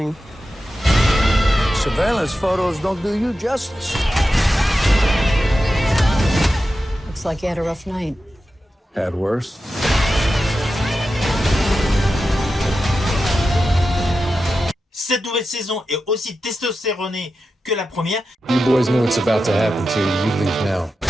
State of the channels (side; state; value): both; normal; correlation 0.91